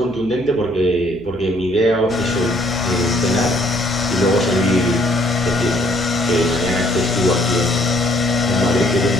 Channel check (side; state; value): right; noise; hum, 19 dB below the sound